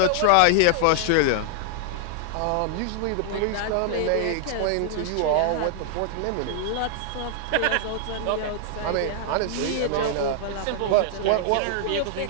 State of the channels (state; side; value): different; both; correlation -0.01